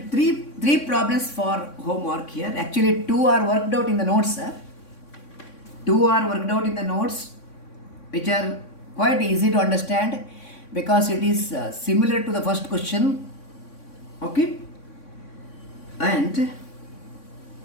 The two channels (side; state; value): right; late; 3.6 ms